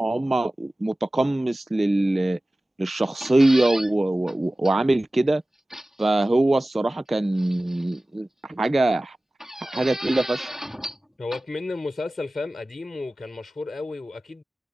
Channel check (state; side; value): normal; both; correlation 0.97